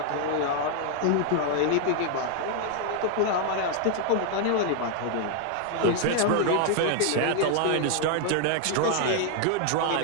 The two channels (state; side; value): different; both; correlation 0.00